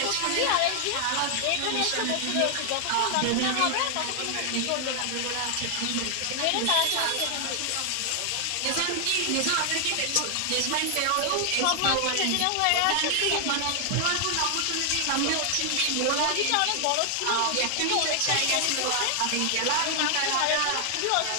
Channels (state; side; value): different; both; correlation 0.00